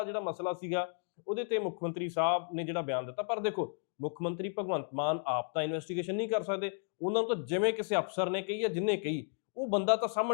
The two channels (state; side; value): silent; right; 55 dB below the other